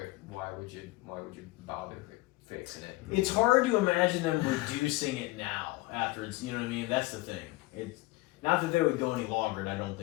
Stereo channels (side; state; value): right; quieter; 21.2 dB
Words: why would you bother fixing it? It's hard to imagine them reducing it now after it's, you know what I mean? That's the thing. It's not that they would go any longer, and I don't